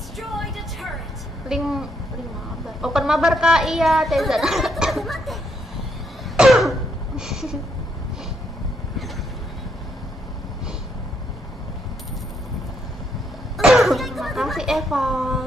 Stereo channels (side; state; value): both; normal; correlation 0.75